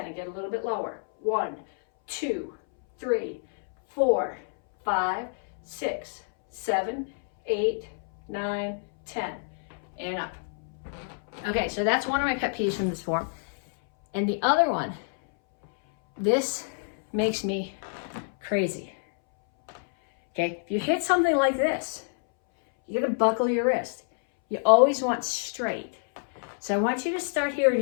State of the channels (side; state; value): right; silent; 60 dB below the other